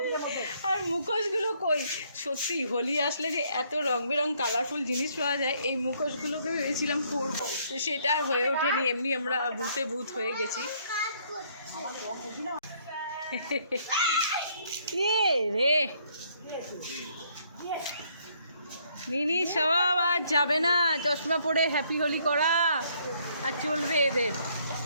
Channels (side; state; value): both; inverted; correlation -0.67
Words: আর মুখোশগুলো কই, সত্যি হোলি আসলে যে এত রং বেরং কালারফুল জিনিস পাওয়া যায়, এই মুখোশগুলোকে ভেবেছিলাম পরবো, তো সেটা আর হয়ে ওঠেনি। এমনি আমরা ভূতে ভূত হয়ে গেছি। রে মিনি সবাব আর যাবে না, চশমা পরে হ্যাপি হোলি করা আর চলবে এদের।